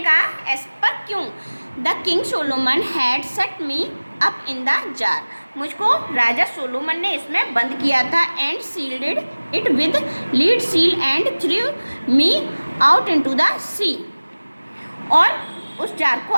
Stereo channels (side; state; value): both; inverted; correlation -1.00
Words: कहा ऐसा पर क्यों? The king Solomon had set me up in the jar. मुझको राजा सोलोमन ने इसमें बंद किया था। And sealed it with lead seal and threw me out into the sea. और उस जार को